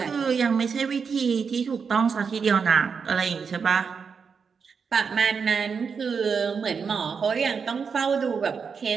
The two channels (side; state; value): left; quieter; 5.9 dB